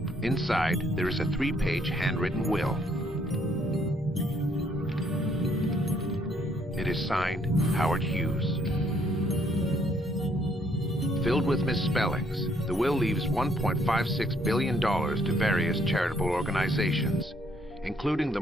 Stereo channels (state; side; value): noise; left; rumble, 19 dB below the sound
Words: Inside, there is a 3-page handwritten will. It is signed Howard Hughes. Filled with misspellings, the will leaves $1.56 billion to various charitable organizations, including the